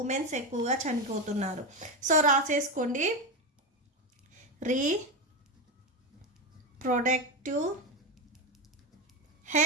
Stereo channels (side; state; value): both; normal; correlation 0.14